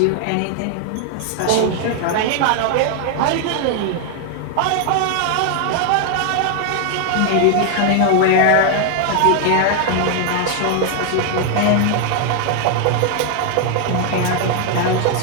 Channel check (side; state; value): both; different; correlation 0.00